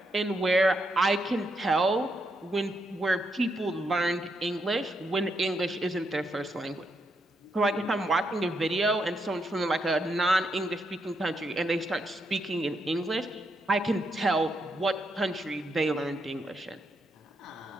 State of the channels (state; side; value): normal; both; correlation 0.80